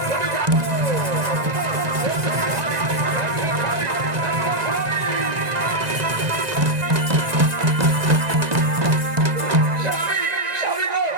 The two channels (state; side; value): late; left; 1.9 ms